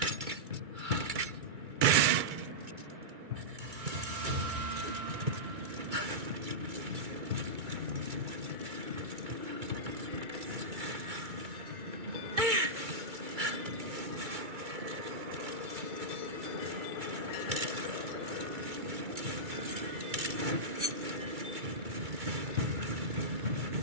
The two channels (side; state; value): left; late; 2.3 ms